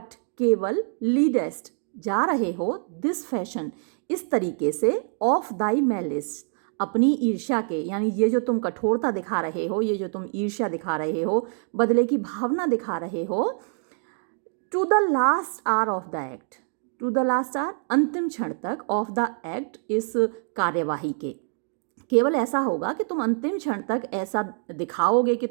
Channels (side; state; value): left; silent; 55 dB below the other